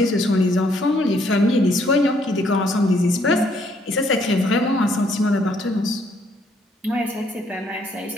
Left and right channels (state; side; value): normal; both; correlation 0.68